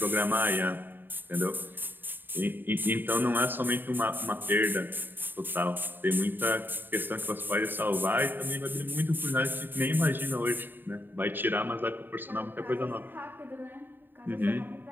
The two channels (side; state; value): left; late; 0.094 ms